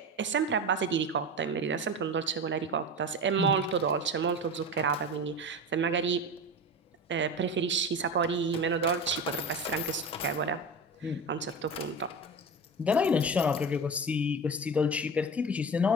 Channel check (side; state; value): both; normal; correlation 0.27